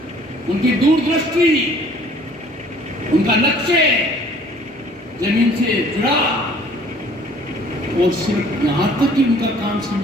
उनकी दूरदृष्टि, उनका लक्ष्य जमीन से जुड़ा। और सिर्फ यहां तक कि उनका काम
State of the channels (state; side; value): normal; both; correlation 0.55